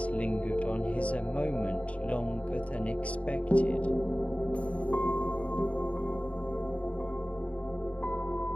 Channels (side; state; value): right; late; 0.064 ms